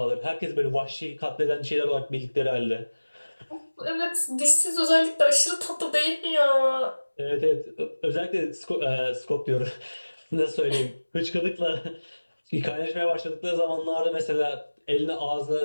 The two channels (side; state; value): both; inverted; correlation -1.00